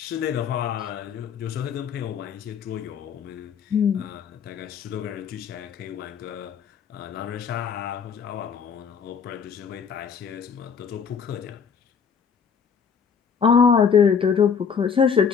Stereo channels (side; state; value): right; quieter; 6.6 dB